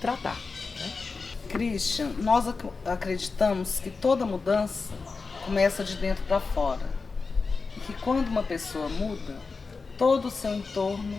Né? Christian, nós acreditamos que toda mudança começa de dentro para fora. E que quando uma pessoa muda, todo o seu entorno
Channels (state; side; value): quieter; right; 4.4 dB